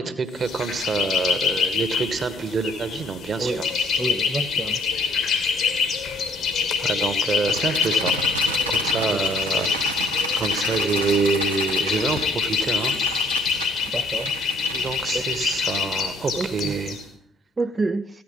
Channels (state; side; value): normal; both; correlation 0.62